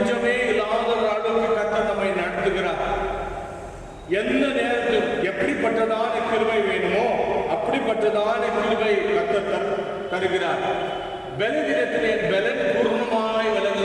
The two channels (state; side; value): identical; both; correlation 1.00